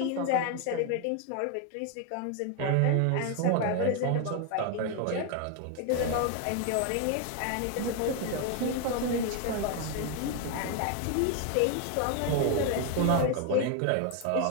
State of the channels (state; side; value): different; both; correlation 0.01